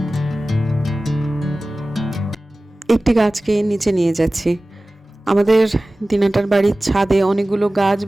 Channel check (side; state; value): both; normal; correlation 0.97